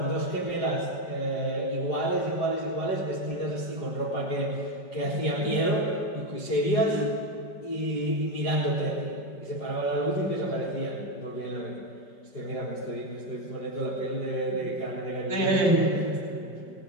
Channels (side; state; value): right; late; 5.1 ms